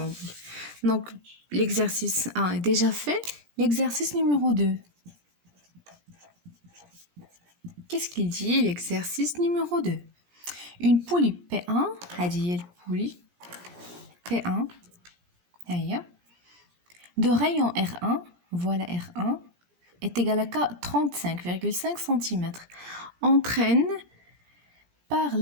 دونك ليكزارسيس 1 ديجا في. L'exercice numéro 2. Qu'est-ce qu'il dit l'exercice numéro 2? Une poulie P1, هذه البولي P1 هيا de rayon R1, voilà R1 est égal à 35,5 cm, entraîne par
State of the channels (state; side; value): late; left; 17 ms